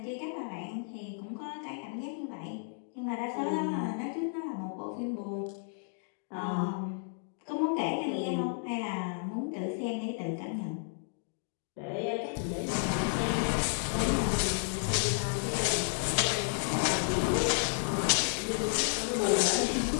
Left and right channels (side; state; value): right; silent; digital silence